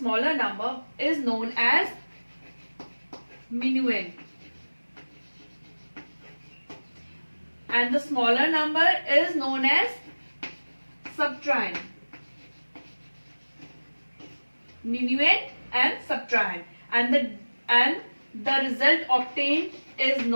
number is known as minuend, and the smaller number is known as subtrahend. Minuend and subtrahend, and the result obtained is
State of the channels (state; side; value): inverted; both; correlation -1.00